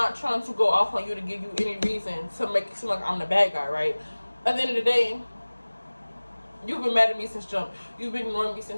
trying to go off on you to give you any reason to make it seem like I'm the bad guy, right? At the end of the day, you've been mad at me since jump. You've been ignoring me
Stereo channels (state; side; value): inverted; both; correlation -1.00